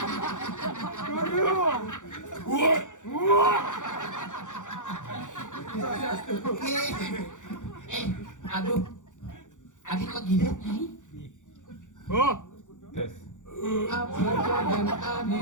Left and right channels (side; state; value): right; late; 0.86 ms